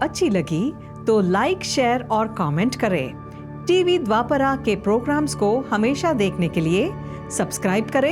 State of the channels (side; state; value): both; identical; correlation 1.00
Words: लगी तो लाइक, शेयर और कमेंट करें। टीवी द्वापरा के प्रोग्राम्स को हमेशा देखने के लिए सब्सक्राइब